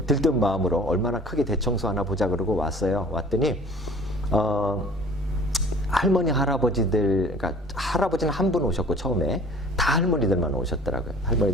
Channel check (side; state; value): both; normal; correlation 0.47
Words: 들뜬 마음으로 얼마나 크게 대청소 하나 보자 그러고 왔어요. 왔더니 할머니 할아버지들, 그러니까 할아버지는 한 분 오셨고 처음에 다 할머니들만 오셨더라고요.